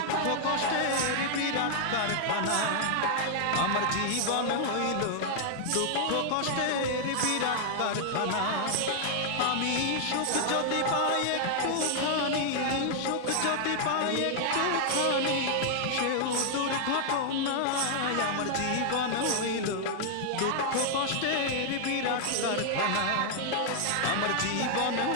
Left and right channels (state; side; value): different; both; correlation -0.01